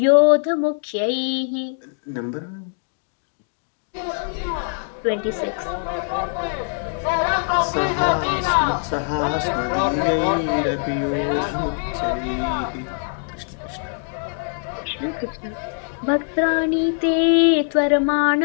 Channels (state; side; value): silent; right; 64 dB below the other